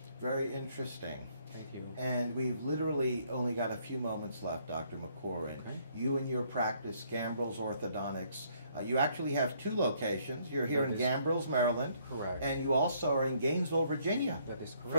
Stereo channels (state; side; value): inverted; both; correlation -0.67